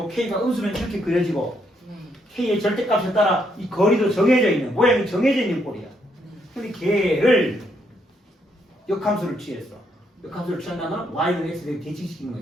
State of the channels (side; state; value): both; normal; correlation 0.74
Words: k가 음수면 이렇게 그려지고 k의 절대값에 따라 이 거리도 정해져 있는 모양이 정해져 있는 꼴이야. 근데 걔를 역함수를 취했어. 역함수를 취한다면 y는 x를 대칭시키는